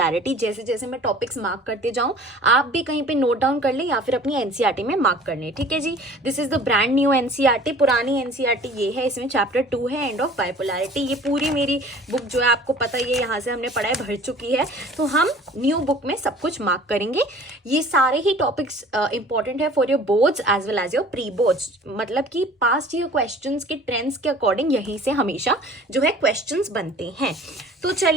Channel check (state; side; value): normal; both; correlation 0.48